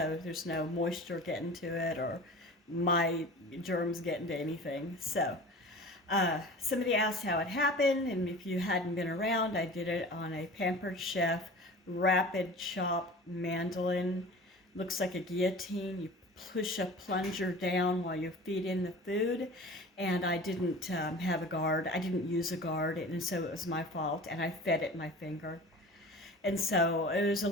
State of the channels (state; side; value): normal; both; correlation 0.39